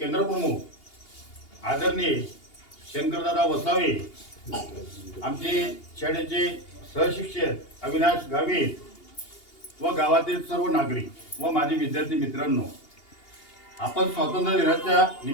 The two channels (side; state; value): right; late; 2.8 ms